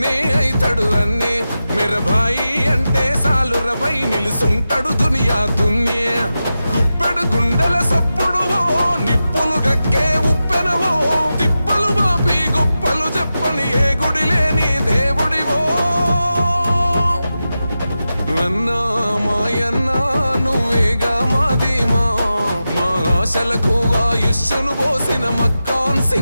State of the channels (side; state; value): both; inverted; correlation -0.92